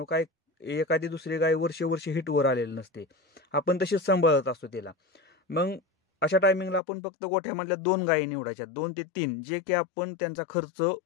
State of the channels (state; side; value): drops out; right; at 6.8 s